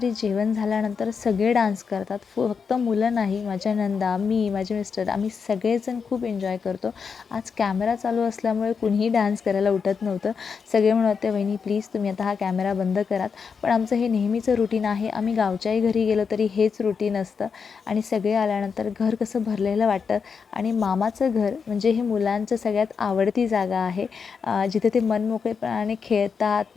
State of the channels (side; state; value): right; quieter; 5.9 dB